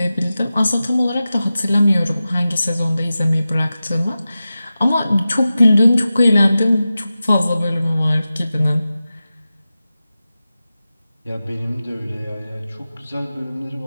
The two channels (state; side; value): inverted; both; correlation -0.94